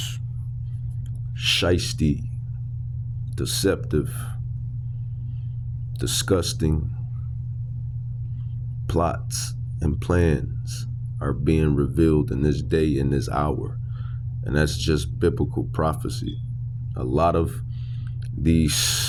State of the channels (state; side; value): identical; both; correlation 1.00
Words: shisty, deceptive, disgusting plots and plans are being revealed in this day, in this hour. And that's just biblical prophecy. A lot of